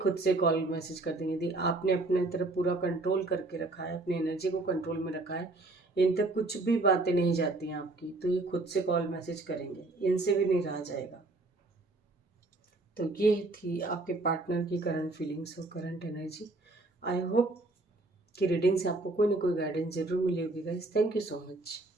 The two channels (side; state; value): left; quieter; 3.1 dB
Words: से कॉल मैसेज कर देंगे। यदि आपने अपने तरफ पूरा कंट्रोल करके रखा है, अपनी एनर्जी को कंट्रोल में रखा है, इन तक कुछ भी बातें नहीं जाती हैं आपकी, तो ये खुद से कॉल मैसेज करेंगे, इनसे भी नहीं रहा जाएगा। तो ये थी आपके पार्टनर की करंट फीलिंग्स और करंट एनर्जी। आई होप कि रीडिंग से आपको कोई ना कोई गाइडेंस जरूर मिली होगी guys. Thank you so much.